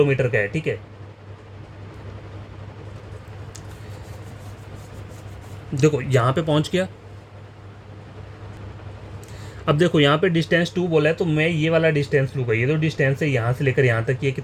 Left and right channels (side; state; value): both; identical; correlation 1.00